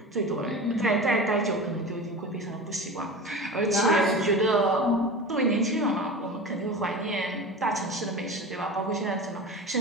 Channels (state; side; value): normal; both; correlation 0.31